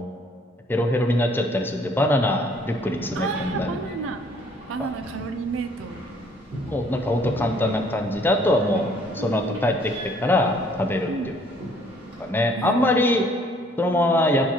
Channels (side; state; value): both; normal; correlation 0.60